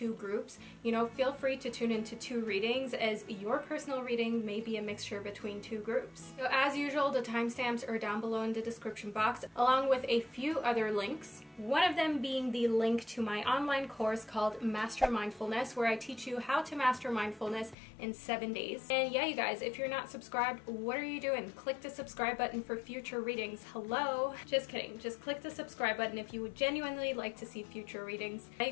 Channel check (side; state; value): right; drops out; at 17.8 s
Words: groups, feel free to tune into 2 readings, as your personal reading may be a mixture between 2 groups. So as usual, the timestamps are down below in the description box, along with a few other links. One of them being the link to my online course called Master Mindfulness, where I teach you how to master mindfulness in 7 days. And yeah, you guys, if you're not subscribed, what are you doing? Click the subscribe button for future readings. Hello? Just kidding. Just click the subscribe button if you would genuinely like to see future readings. Hey